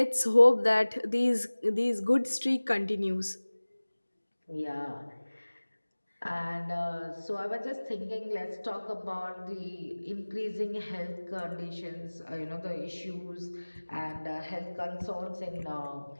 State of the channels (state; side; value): inverted; both; correlation -1.00